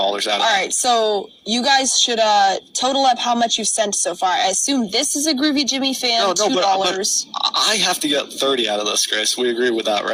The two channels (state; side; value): identical; both; correlation 1.00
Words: of it. All right, so you guys should total up how much you've sent so far. I assume this is a Groovy Jimmy fan, $2. But I have to get 30 out of this, Grace. We agree with that,